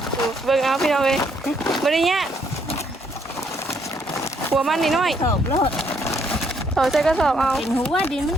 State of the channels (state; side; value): normal; both; correlation 0.70